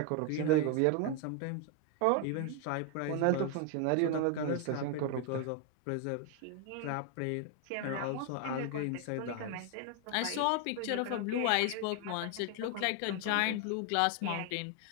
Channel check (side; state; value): both; different; correlation 0.01